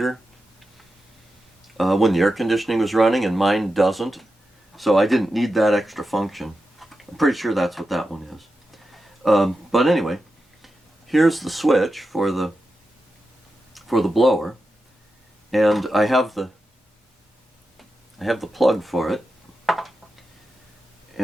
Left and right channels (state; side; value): normal; both; correlation 0.90